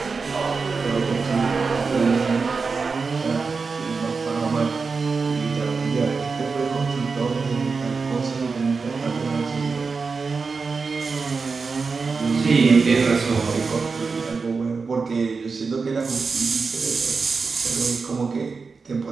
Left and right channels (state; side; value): quieter; left; 4.7 dB